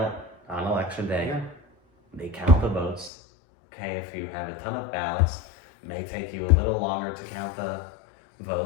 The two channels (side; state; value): right; drops out; at 3.1 s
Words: on election day. Yeah. They count the votes. Okay, if you have a ton of ballots, it may take you a little longer to count the